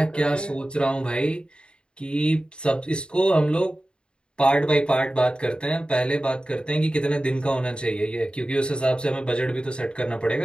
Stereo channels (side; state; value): right; late; 0.052 ms